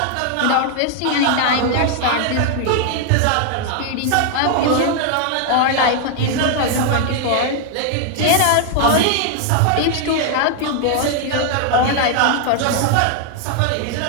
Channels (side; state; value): both; different; correlation 0.00